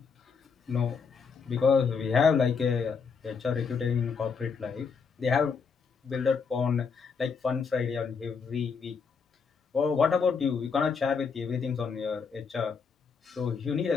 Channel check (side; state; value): right; quieter; 5.6 dB